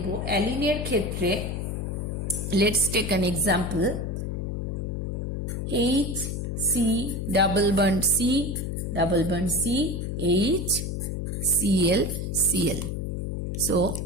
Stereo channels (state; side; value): noise; left; hum, 3 dB below the sound